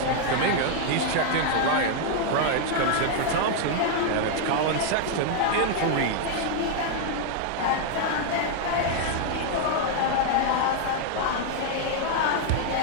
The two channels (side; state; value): both; different; correlation 0.00